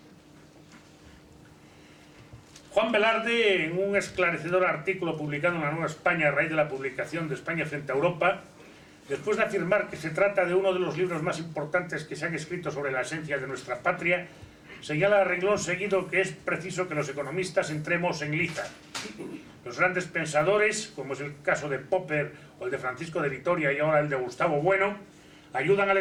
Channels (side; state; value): both; identical; correlation 1.00